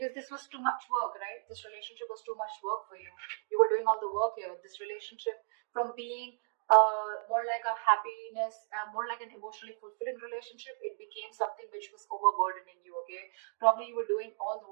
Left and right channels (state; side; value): silent; left; digital silence